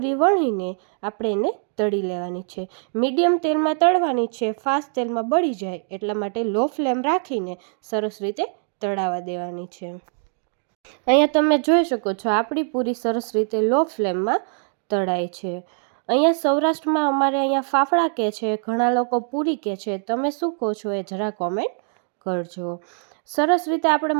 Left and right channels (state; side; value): silent; left; 55 dB below the other